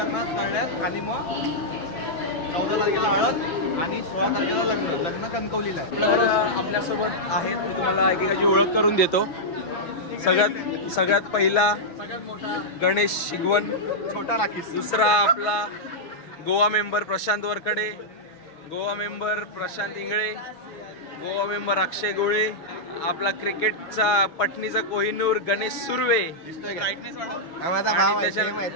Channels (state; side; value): late; right; 6.6 ms